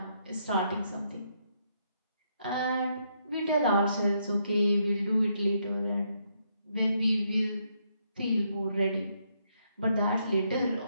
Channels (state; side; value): inverted; both; correlation -0.75